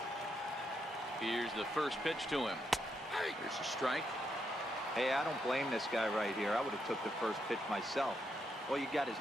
Here's the first pitch to him. Here's a strike. Hey, I don't blame this guy right here. I would have took the first pitch myself. All you got is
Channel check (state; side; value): normal; both; correlation 0.80